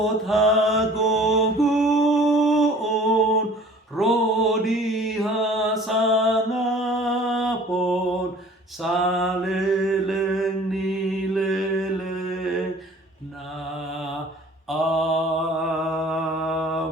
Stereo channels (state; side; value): normal; both; correlation 0.49